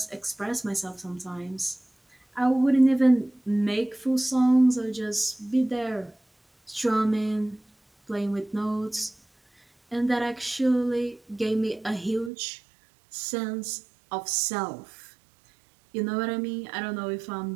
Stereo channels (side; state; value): left; drops out; at 12.3 s